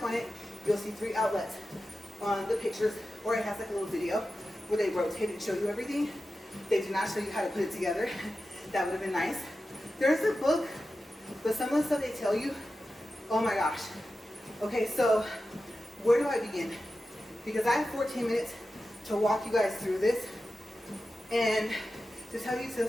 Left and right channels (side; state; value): both; normal; correlation 0.92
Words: on it, you'll see 3 outlets on the pictures, or it has like a little video where they rotate and show you everything. They do not show you how to put it together. That would have been nice. There's a book, but some of the stuff they tell you, oh my gosh. Okay, so where do I begin? Because I have 14 minutes to walk you guys through this, and to tell you to